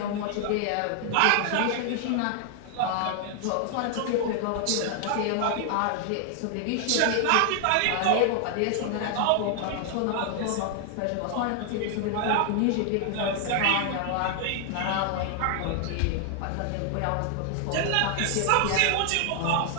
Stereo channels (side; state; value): both; different; correlation 0.00